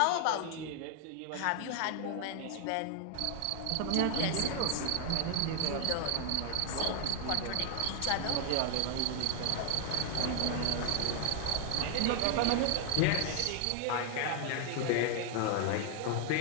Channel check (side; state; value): both; different; correlation 0.00